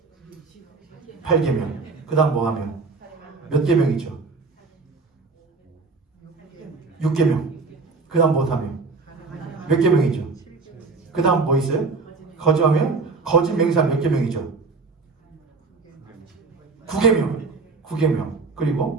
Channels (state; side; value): quieter; left; 4.2 dB